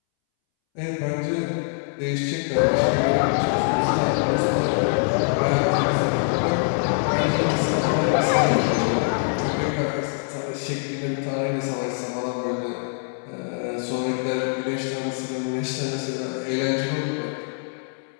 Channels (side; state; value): right; silent; 63 dB below the other